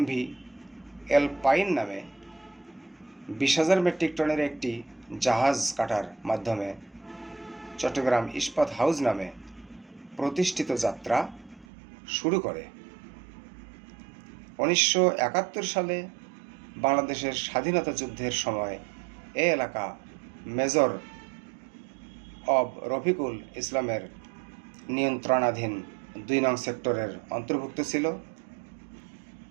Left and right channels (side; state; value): left; drops out; at 11.7 s